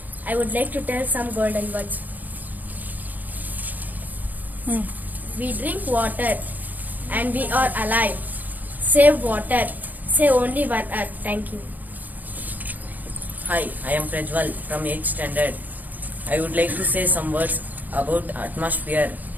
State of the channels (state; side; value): late; left; 0.082 ms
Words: I would like to tell some golden words. We drink water and we are alive. Save water. Say only one earth. Thank you. Hi, I am Prajwal from 8th standard. I would like to say some words about atmosphere.